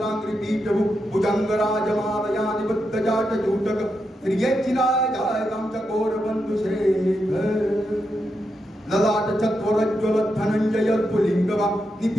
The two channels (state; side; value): normal; both; correlation 0.85